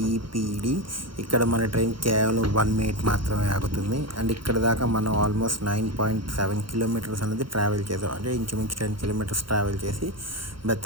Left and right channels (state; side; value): late; left; 0.73 ms